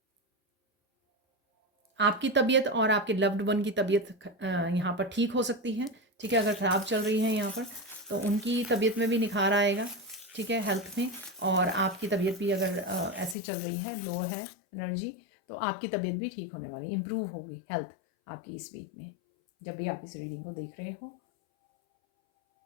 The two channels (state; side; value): drops out; right; at 13.4 s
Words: आपकी तबीयत और आपके लव्ड वन की तबीयत यहाँ पर ठीक हो सकती है। ठीक है, अगर ख़राब चल रही है यहाँ पर, तो उनकी तबीयत में भी निखार आएगा। ठीक है, हेल्थ में। और आपकी तबीयत भी अगर ऐसी चल रही है, लो है एनर्जी, तो आपकी तबीयत भी ठीक होने वाली, इम्प्रूव होगी हेल्थ आपकी इस वीक में, जब भी आप इस रीडिंग को देख रहे हो।